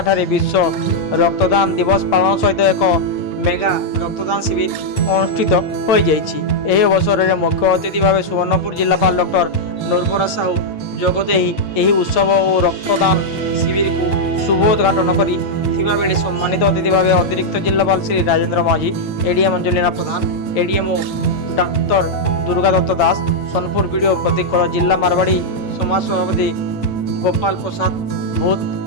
ବିଶ୍ୱ ରକ୍ତଦାନ ଦିବସ ପାଳନ ସହିତ ଏକ ମେଗା ରକ୍ତଦାନ ଶିବିର ଅନୁଷ୍ଠିତ ହୋଇଯାଇଛି। ଏହି ଅବସରରେ ମୁଖ୍ୟ ଅତିଥି ଭାବେ ସୁବର୍ଣ୍ଣପୁର ଜିଲ୍ଲାପାଳ ଡକ୍ଟର ନୂରବର ସାହୁ ଯୋଗଦେଇ ଏହି ଉତ୍ସବ ଓ ରକ୍ତଦାନ ଶିବିରକୁ ଶୁଭ ଉଦ୍ଘାଟନ କରିଥିବା ବେଳେ ସମ୍ମାନିତ ଅତିଥି ଭାବେ ଅତିରିକ୍ତ ଜିଲ୍ଲାପାଳ ଶ୍ରୀ ରାଜେନ୍ଦ୍ର ମାଝୀ, ଏଡିଏମ୍ ଅଞ୍ଜଲିନା ପ୍ରଧାନ, ଏଡିଏମ୍ଓ ଡାକ୍ତର ଦୁର୍ଗା ଦତ୍ତ ଦାସ, ସୋନପୁର ବିଡିଓ ପ୍ରତୀକ, ଜିଲ୍ଲା ମାରବାଡ଼ି ସମାଜ ସଭାପତି ଗୋପାଳ ପ୍ରସାଦ ଭୂତ,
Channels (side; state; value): right; late; 8.9 ms